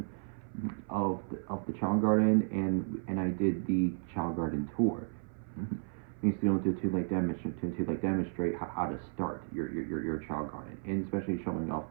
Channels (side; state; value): left; silent; 55 dB below the other